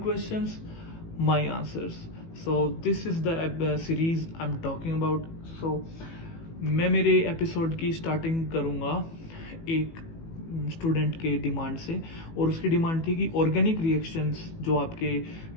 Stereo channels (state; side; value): late; right; 18 ms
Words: questions, my answers. So this is the series I am talking about. So मैं मेरे एपिसोड की स्टार्टिंग करूँगा एक स्टूडेंट के डिमांड से, और उसकी डिमांड थी कि ऑर्गेनिक रिएक्शंस जो आपके